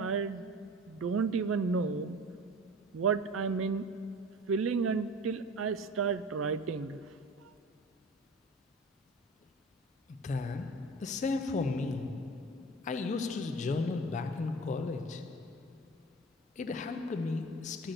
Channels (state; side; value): normal; both; correlation 0.38